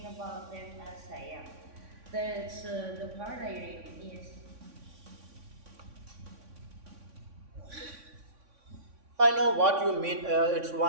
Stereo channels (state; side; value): late; left; 3.6 ms